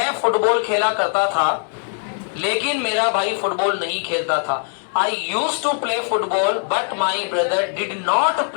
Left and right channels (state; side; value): silent; right; 55 dB below the other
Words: फुटबॉल खेला करता था लेकिन मेरा भाई फुटबॉल नहीं खेलता था, I used to play football but my brother did not